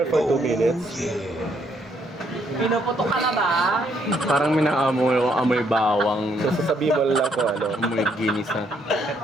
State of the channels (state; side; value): normal; both; correlation 0.71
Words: for 2 minutes. Pinuputo ka na ba? Parang may naamoy bawang, So, sasabihin mo lang kung ano. amoy ginisa.